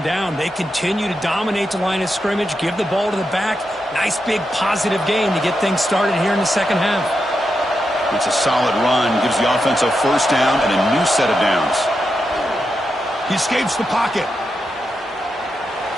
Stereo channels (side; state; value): both; normal; correlation 0.86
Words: down. They continue to dominate the line of scrimmage, give the ball to the back. Nice big positive game to get things started here in the second half. It's a solid run. Gives the offense a first down and a new set of downs. He escapes the pocket.